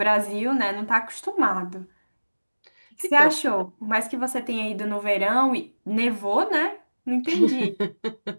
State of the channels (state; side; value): inverted; both; correlation -1.00